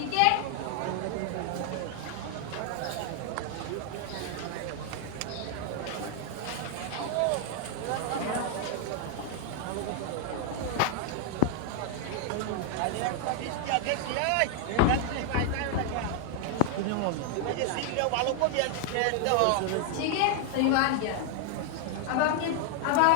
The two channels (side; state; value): both; different; correlation 0.00